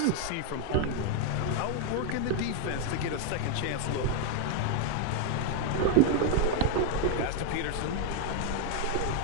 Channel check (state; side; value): different; both; correlation 0.00